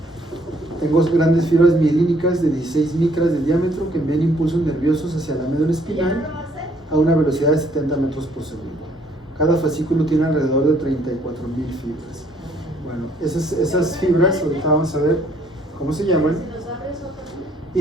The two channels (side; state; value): both; normal; correlation 0.64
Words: tengo grandes fibras mielínicas de 16 micras de diámetro que envían impulsos nerviosos hacia la médula espinal a una velocidad de 70 metros por segundo. Cada fascículo tiene alrededor de 34,000 fibras. Bueno, esas fibras, ahorita vamos a ver cómo se llaman,